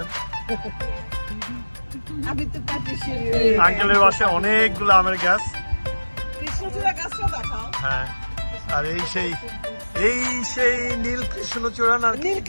আমি তো পাচ্ছি আঙ্কেলের বাসায় অনেকগুলো আমের গাছ। কৃষ্ণচূড়া গাছটা দেখাও। হ্যাঁ, আর এই সেই নীল কৃষ্ণচূড়া না? নীল ও,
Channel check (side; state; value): both; inverted; correlation -1.00